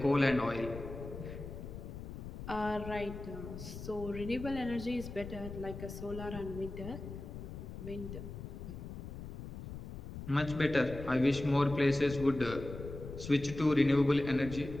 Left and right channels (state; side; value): noise; left; rumble, 9 dB below the sound